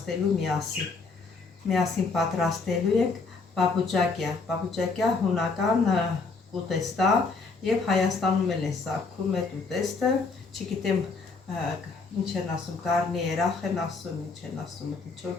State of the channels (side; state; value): right; quieter; 4.2 dB